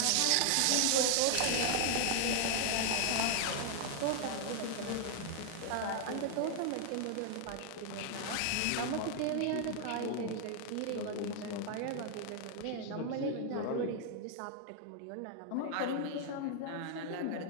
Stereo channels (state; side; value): different; both; correlation 0.00